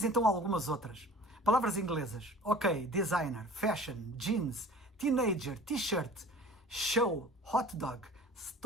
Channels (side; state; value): both; normal; correlation 0.44